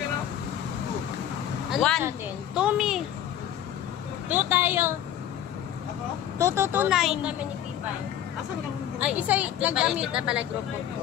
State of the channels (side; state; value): right; quieter; 10.9 dB